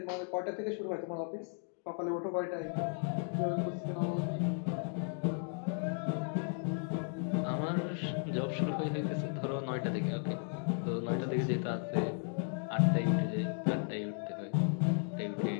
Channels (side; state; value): right; silent; 54 dB below the other